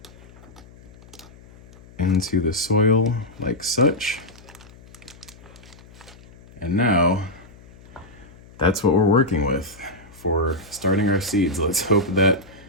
into the soil like such. And now that's what we're working with for starting our seeds. Let's hope that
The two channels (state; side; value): noise; left; hum, 22 dB below the sound